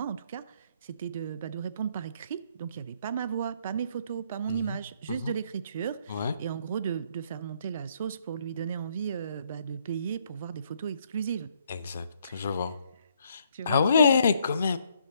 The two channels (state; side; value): inverted; both; correlation -0.69